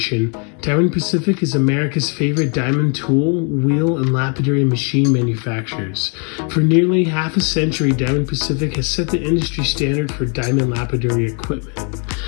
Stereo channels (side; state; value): right; quieter; 38.0 dB